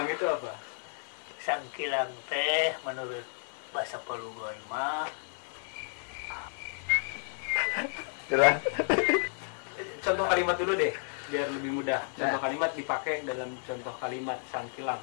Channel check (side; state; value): right; silent; 57 dB below the other